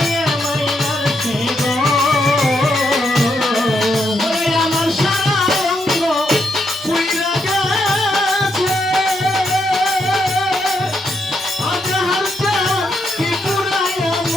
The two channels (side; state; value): both; normal; correlation 0.79